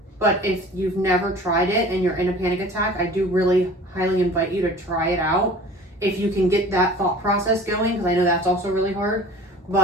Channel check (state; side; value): normal; both; correlation 0.44